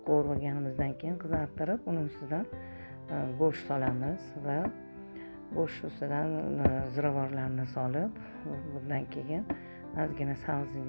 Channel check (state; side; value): inverted; both; correlation -1.00